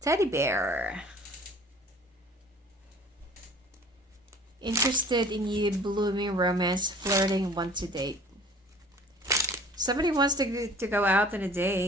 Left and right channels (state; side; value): normal; both; correlation 0.49